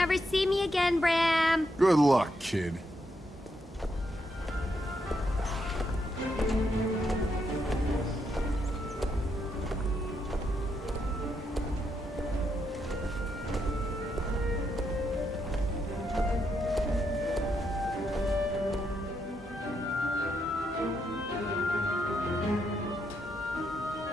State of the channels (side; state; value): both; normal; correlation 0.79